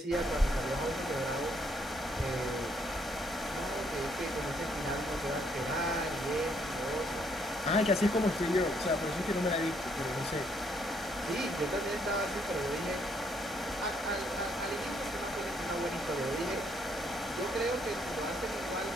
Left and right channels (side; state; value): both; normal; correlation 0.70